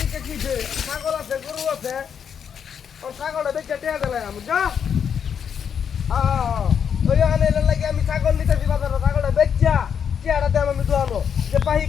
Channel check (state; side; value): quieter; right; 7.6 dB